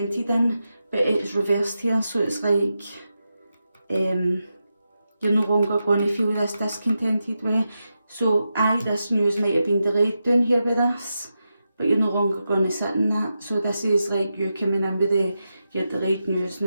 in, but it's reversed here, so it's like you're no longer going to feel this discontented way. So this news might have been delayed down here with us, but you're no longer going to sit in that. So this is like you coming in with your delayed news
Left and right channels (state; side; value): inverted; both; correlation -0.88